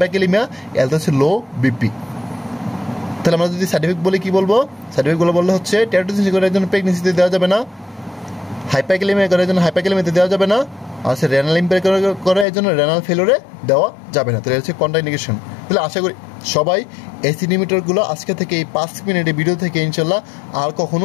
এলতে হচ্ছে লো বিপি। তাহলে আমরা যদি সার্টিফিকেট বলে কী বলবো, সার্টিফিকেটগুলো বললে হচ্ছে টেরাটোজেনিসিস করার জন্য প্রেগনেন্সিতে দেওয়া যাবে না, হাইপারক্যালিমিয়া করার জন্য হাইপারক্যালিমিয়াতে দেওয়া যাবে না, আর সে রেনাল ইম্পেয়ার করে এই জন্য রেনাল ফেলোরে দেওয়া যাবে না। তাহলে হচ্ছে কন্ট্রাইন্ডিকেশন। তাহলে আশা করি সবাই এসি ইনহিবিটরগুলো আজকে থেকে এই 5 মিনিটের ভিডিও থেকে ইনশাল্লাহ আর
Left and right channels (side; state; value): right; drops out; at 12.5 s